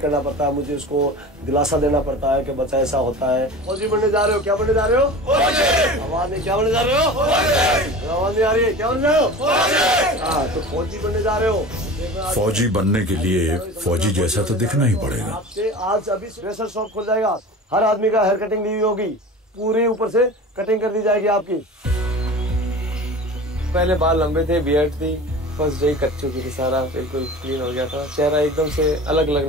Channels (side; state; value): both; normal; correlation 0.35